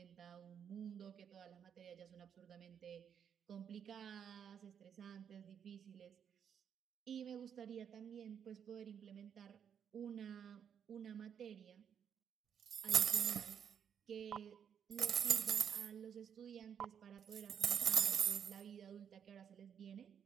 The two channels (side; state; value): left; quieter; 8.1 dB